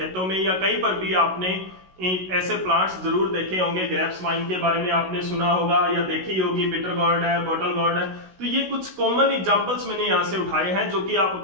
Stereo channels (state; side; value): late; left; 16 ms